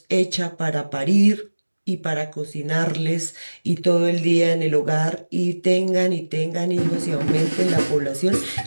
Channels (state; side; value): inverted; both; correlation -1.00